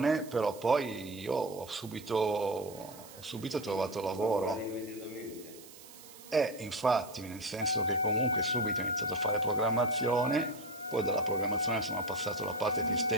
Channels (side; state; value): right; noise; hiss, 19 dB below the sound